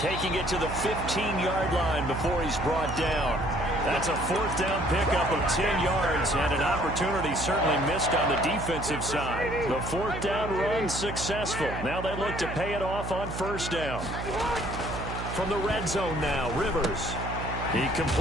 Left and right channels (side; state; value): right; noise; hum, 6 dB below the sound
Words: it to the 15-yard line before he's brought down. That's a 4th down pickup of 10 yards and an opportunity certainly missed on the defensive side. The 4th down run successful. Now they look to pay it off on 1st down. From the red zone now, Rivers. He